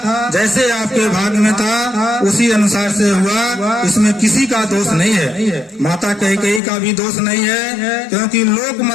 जैसे आपके भाग में था, उसी अनुसार से हुआ, इसमें किसी का दोष नहीं है। माता कैकेयी का भी दोष नहीं है, क्योंकि लोक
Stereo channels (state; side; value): drops out; right; at 6.6 s